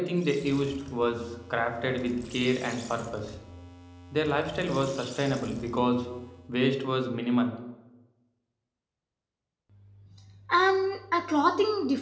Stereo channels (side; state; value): both; identical; correlation 1.00